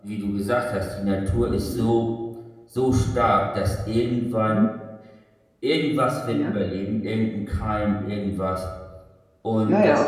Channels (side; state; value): both; identical; correlation 1.00